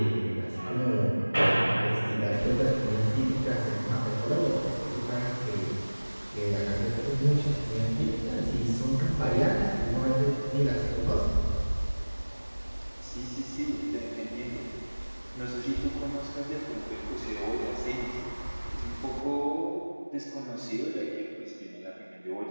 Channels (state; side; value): inverted; both; correlation -1.00